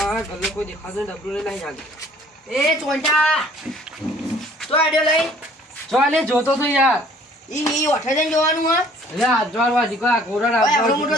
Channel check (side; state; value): both; normal; correlation 0.56